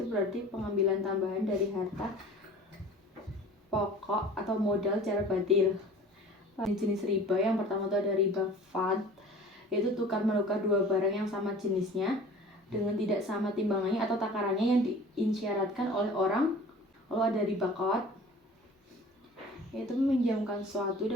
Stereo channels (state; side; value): normal; both; correlation 0.43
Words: berarti pengambilan tambahan dari harta pokok atau modal secara batil. Jenis riba yang pertama itu ada riba fad, yaitu tukar menukar dua barang yang sama jenisnya dengan tidak sama timbangannya atau takarannya yang diisyaratkan oleh orang. Lalu ada riba qad, yaitu meminjamkan sesuatu